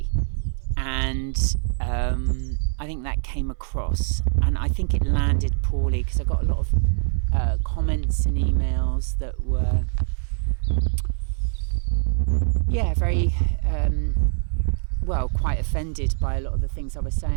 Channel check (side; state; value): left; silent; 61 dB below the other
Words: and I think that came across, and I think it landed poorly because I got a lot of comments and emails that were very quite offended by a lot of the things I was